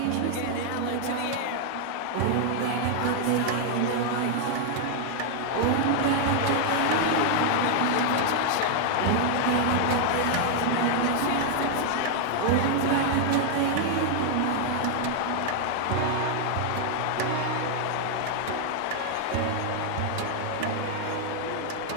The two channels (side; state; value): both; different; correlation 0.00